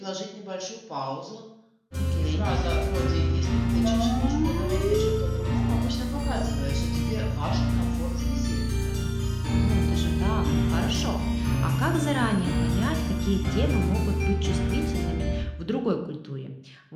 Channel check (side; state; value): both; identical; correlation 1.00